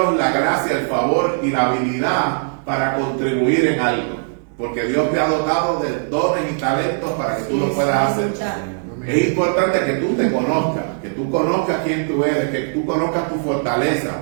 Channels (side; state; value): left; silent; digital silence